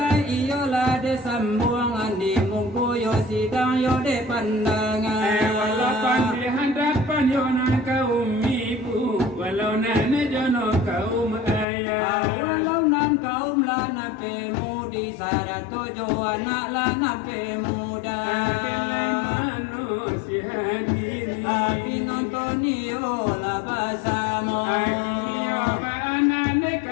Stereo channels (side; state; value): right; drops out; at 11.7 s